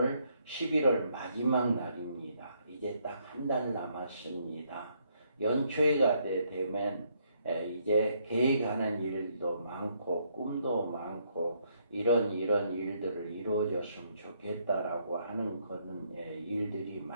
11월 마지막 날입니다. 이제 딱 한 달 남았습니다. 연초가 되면 이제 계획하는 일도 많고 꿈도 많고 이런 일들을 이루어졌으면 좋겠다라고 하는 그런 일들이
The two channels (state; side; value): inverted; both; correlation -0.72